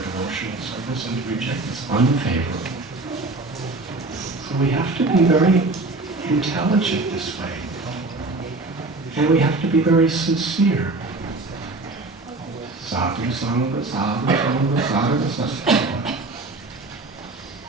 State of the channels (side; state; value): left; quieter; 3.2 dB